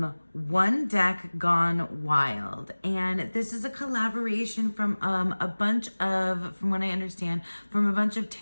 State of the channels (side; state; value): both; inverted; correlation -1.00